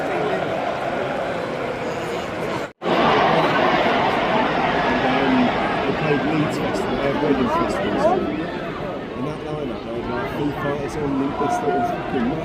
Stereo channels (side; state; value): both; identical; correlation 1.00